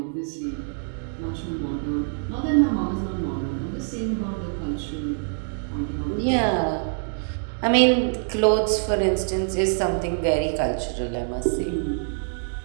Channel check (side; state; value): left; silent; digital silence